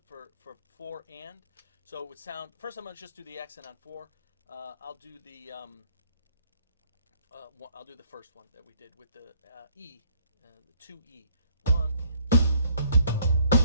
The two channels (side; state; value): both; inverted; correlation -0.63